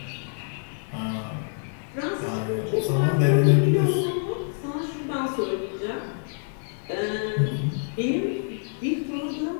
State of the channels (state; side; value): silent; right; digital silence